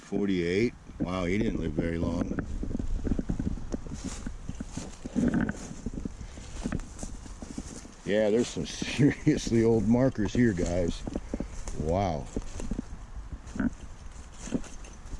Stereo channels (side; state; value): both; identical; correlation 1.00